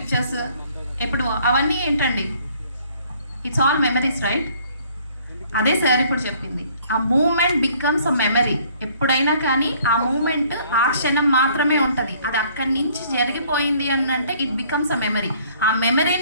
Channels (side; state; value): both; inverted; correlation -0.59